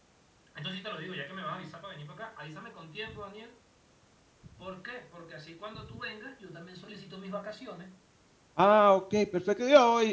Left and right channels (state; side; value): identical; both; correlation 1.00